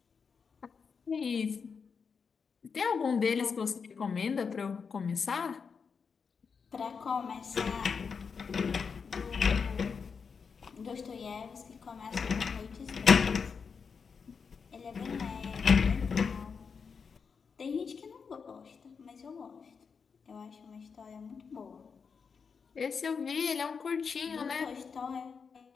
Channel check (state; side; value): quieter; right; 5.8 dB